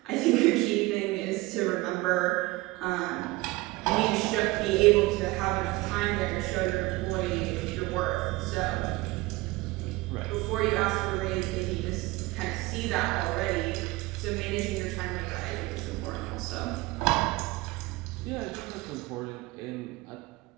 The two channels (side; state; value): left; quieter; 21.2 dB